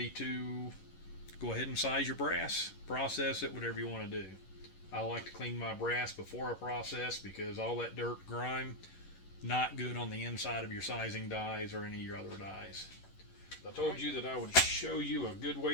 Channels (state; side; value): late; right; 11 ms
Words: to go ahead and size your brass, process it, whatever you want to do. I like to clean my brass before I process because all that dirt, grime, not good on the inside of your sizing dies or any of your other dies. I told you that I would show you a good